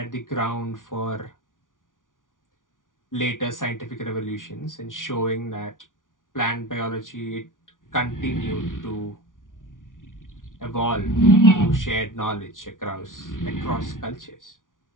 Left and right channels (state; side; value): late; right; 0.88 ms